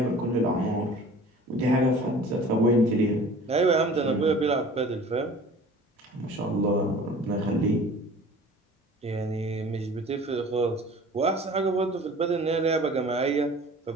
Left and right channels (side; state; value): both; normal; correlation 0.45